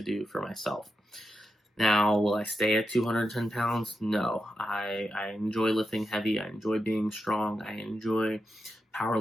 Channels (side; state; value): both; normal; correlation 0.88